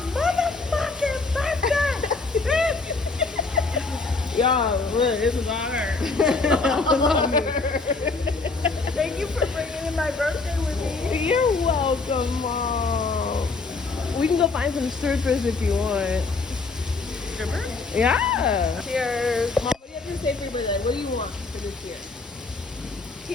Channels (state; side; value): quieter; right; 3.9 dB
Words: motherfucking birthday. Y'all, look, this is on her. Thank you for bringing in my birthday with me. You're welcome, Mom. We can go find some strippers if you want. Stripper? Yeah. Cheers. Mom, what do you have to say for your birthday? What do you want for this year?